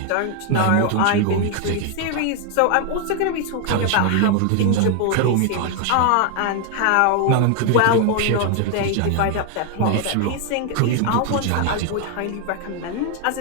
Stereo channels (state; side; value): different; both; correlation 0.00